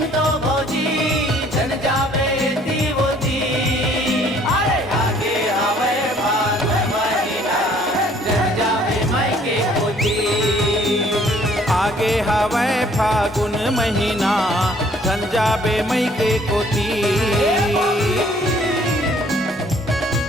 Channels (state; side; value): normal; both; correlation 0.59